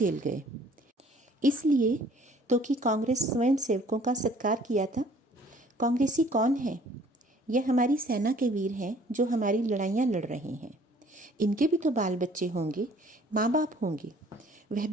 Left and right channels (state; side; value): normal; both; correlation 0.56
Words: गए? इसलिए तो कि कांग्रेस स्वयं सेवकों का सत्कार किया था। कांग्रेसी कौन है? यह हमारी सेना के वीर हैं जो हमारी लड़ाइयाँ लड़ रहे हैं। इनके भी तो बाल बच्चे होंगे, माँ बाप होंगे, वह